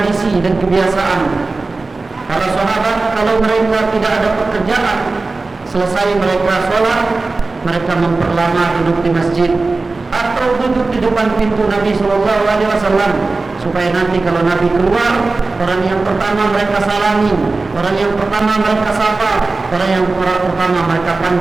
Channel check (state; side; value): quieter; left; 3.6 dB